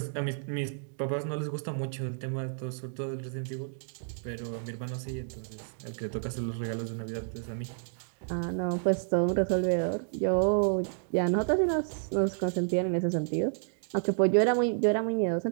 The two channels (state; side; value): silent; left; digital silence